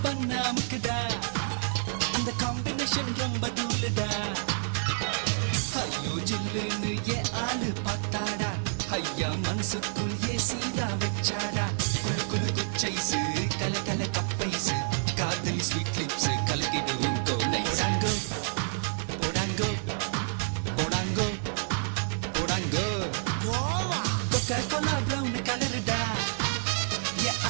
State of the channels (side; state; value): left; silent; digital silence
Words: banna mukda, and the combination romba dool da. Ayyo jillunu ye aalu patada. ஐயா மனசுக்குள் ஏசிதா வச்சாடா குளு குளு குச்சைசு கல கல கப்பைசு காதலி sweet lips கலக்கிடுவோம் கோடைசாங்கோ போடாங்கோ போடாங்கோ போடாங்கோ கொக்கா Cola brown கலருடா ஏ